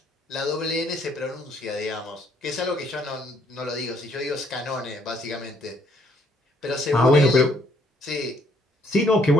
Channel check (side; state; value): both; normal; correlation 0.66